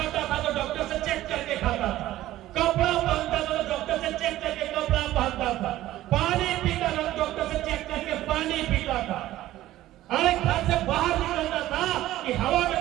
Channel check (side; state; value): left; quieter; 14.9 dB